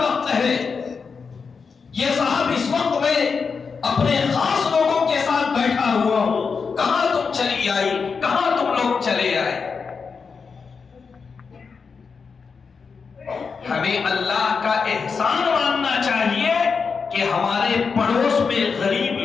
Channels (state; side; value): quieter; right; 5.4 dB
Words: ہے، یہ صاحب اس وقت میں اپنے خاص لوگوں کے ساتھ بیٹھا ہوا ہوں، کہاں تم چلی آئی، کہاں تم لوگ چلے آئے۔ ہمیں اللہ کا احسان ماننا چاہیے کہ ہمارے پڑوس میں غریب